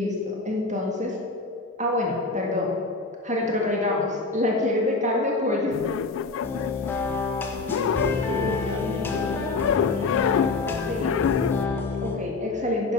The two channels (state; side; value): quieter; right; 3.6 dB